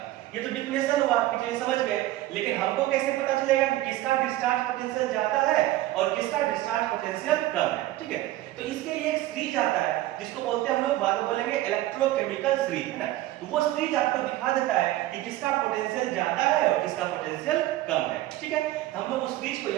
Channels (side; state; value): left; quieter; 15.8 dB